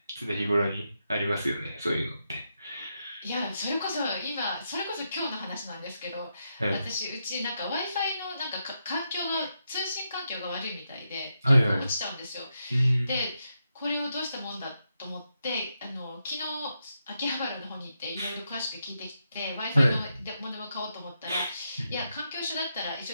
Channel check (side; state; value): both; inverted; correlation -0.84